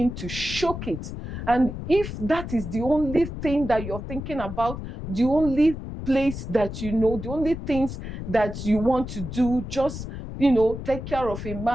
to shock it. And if that is the only thing that you're thinking about, the only place that you know, the only things that you want to do, just, take care of a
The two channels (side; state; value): left; noise; rumble, 8 dB below the sound